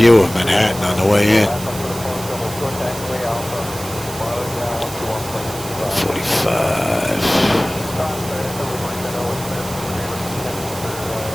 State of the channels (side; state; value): right; noise; hiss, 12 dB below the sound